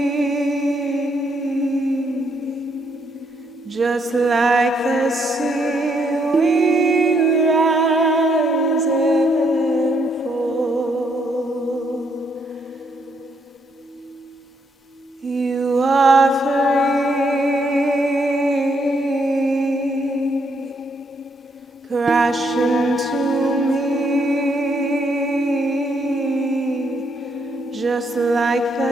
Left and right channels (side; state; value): both; normal; correlation 0.74